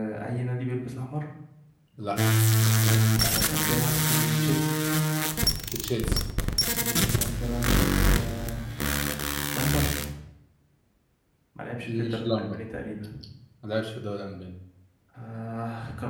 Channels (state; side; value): identical; both; correlation 1.00